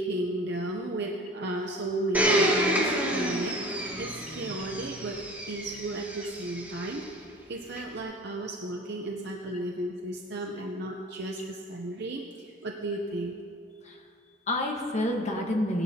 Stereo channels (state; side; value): normal; both; correlation 0.43